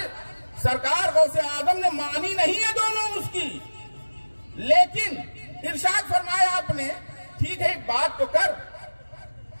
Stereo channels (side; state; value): both; inverted; correlation -1.00